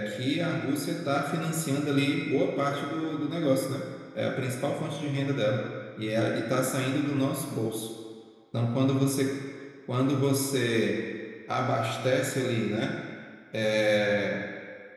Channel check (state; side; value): identical; both; correlation 1.00